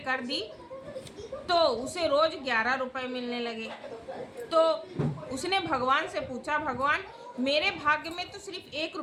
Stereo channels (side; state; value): both; identical; correlation 1.00